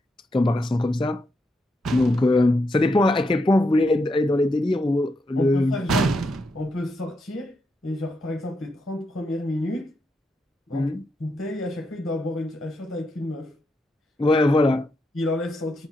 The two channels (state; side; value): normal; both; correlation 0.82